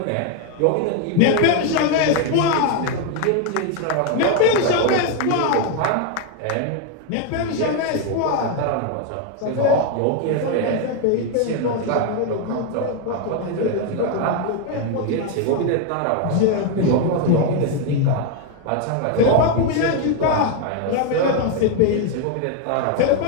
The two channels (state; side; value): different; both; correlation 0.01